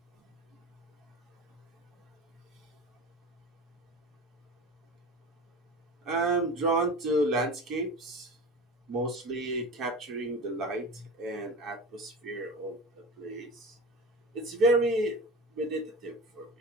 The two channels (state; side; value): normal; both; correlation 0.32